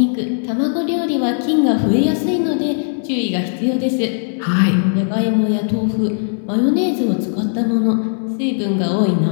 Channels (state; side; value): silent; right; digital silence